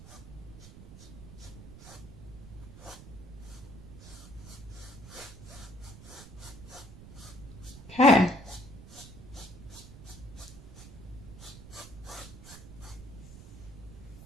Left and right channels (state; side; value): noise; right; rumble, 14 dB below the sound